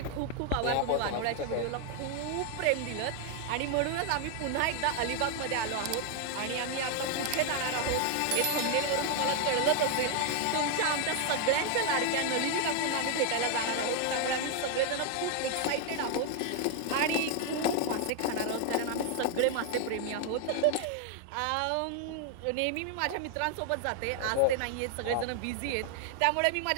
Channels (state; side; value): different; both; correlation 0.00